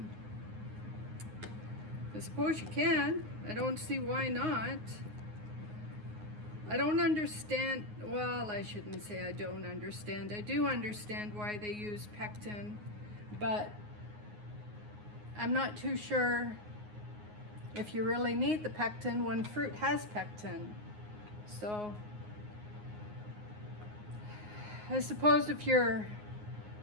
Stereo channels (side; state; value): left; late; 9.5 ms